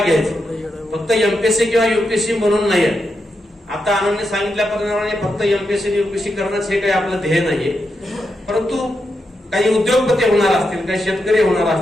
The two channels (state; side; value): normal; both; correlation 0.85